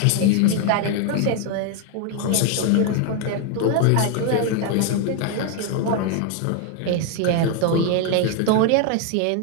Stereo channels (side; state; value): both; different; correlation 0.01